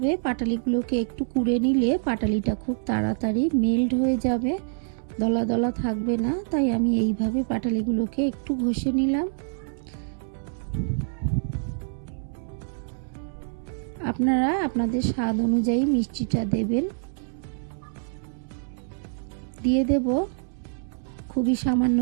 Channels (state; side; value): silent; left; 61 dB below the other